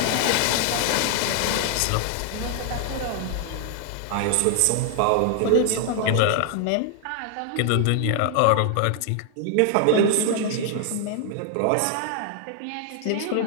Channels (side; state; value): both; different; correlation 0.00